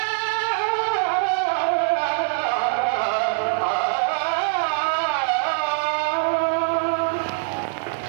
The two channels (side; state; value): left; silent; digital silence